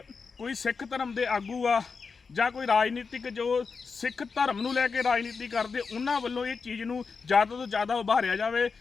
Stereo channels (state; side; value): quieter; right; 5.1 dB